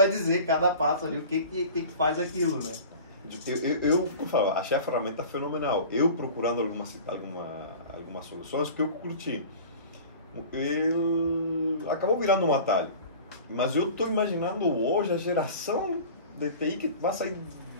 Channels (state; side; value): inverted; both; correlation -0.40